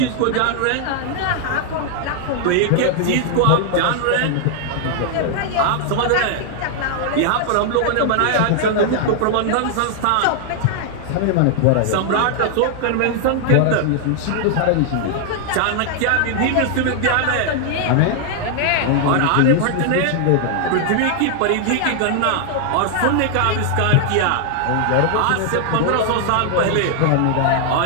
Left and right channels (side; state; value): both; different; correlation 0.00